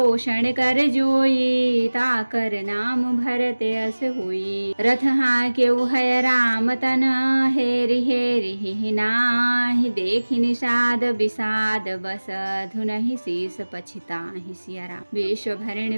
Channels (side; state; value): both; inverted; correlation -1.00